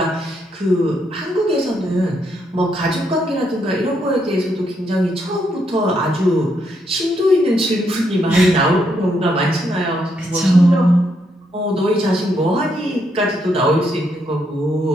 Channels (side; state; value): both; normal; correlation 0.76